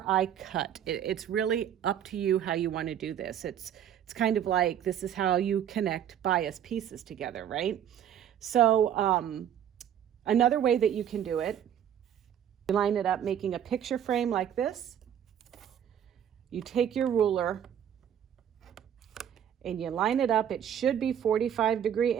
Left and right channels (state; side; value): quieter; left; 9.7 dB